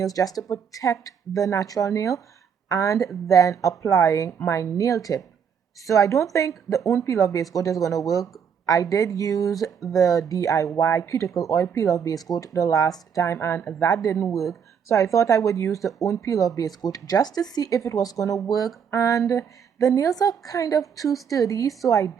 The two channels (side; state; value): left; quieter; 7.3 dB